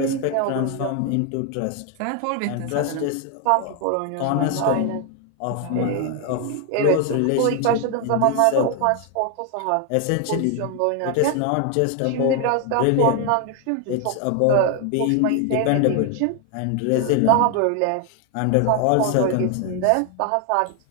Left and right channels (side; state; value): both; different; correlation 0.00